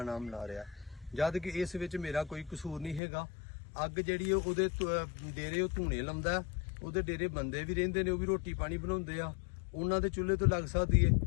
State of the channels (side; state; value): right; drops out; at 3.0 s